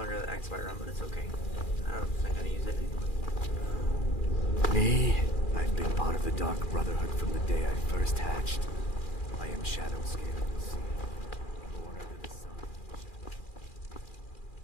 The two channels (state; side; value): late; right; 2.4 ms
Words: the X run, but it's okay. I don't think I'm gonna use it anyway. Me? I've been part of the Dark Brotherhood from the day I first hatched. I am Shadow Scale of the Sea, born under the sun.